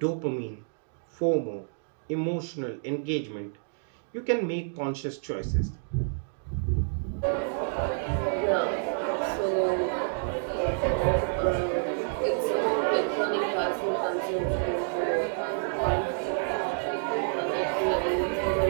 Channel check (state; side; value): silent; left; digital silence